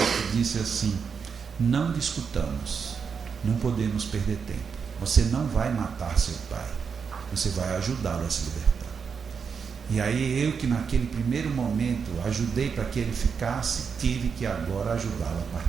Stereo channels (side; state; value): left; quieter; 6.2 dB